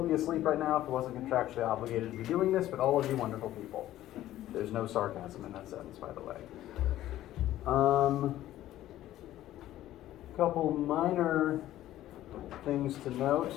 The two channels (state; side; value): quieter; right; 13.8 dB